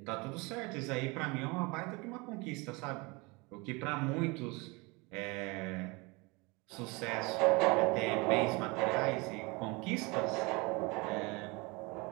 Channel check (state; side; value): quieter; left; 26.7 dB